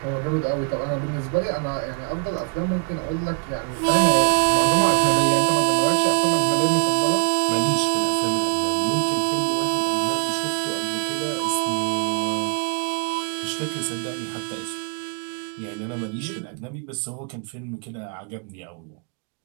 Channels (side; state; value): left; quieter; 35.4 dB